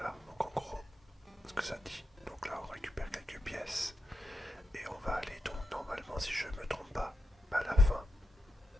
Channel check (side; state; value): both; normal; correlation 0.87